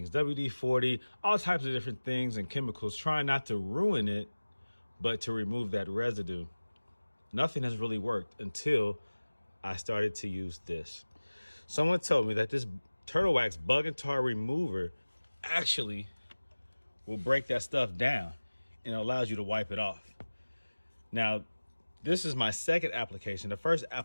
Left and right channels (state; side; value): inverted; both; correlation -1.00